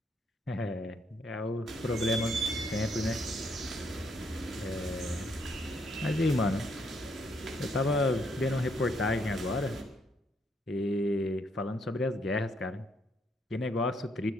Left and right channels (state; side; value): normal; both; correlation 0.72